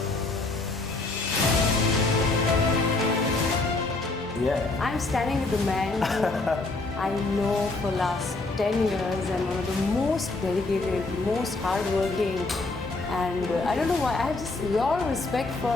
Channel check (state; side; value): quieter; right; 3.3 dB